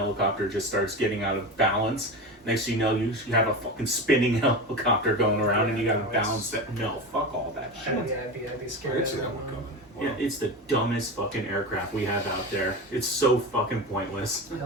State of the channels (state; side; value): normal; both; correlation 0.24